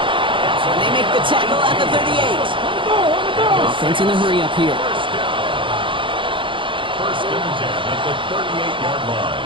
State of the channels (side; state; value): left; late; 0.24 ms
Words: And they make the tackle at the 38. Offense in the hurry-up here. 1st and 10 at the 38-yard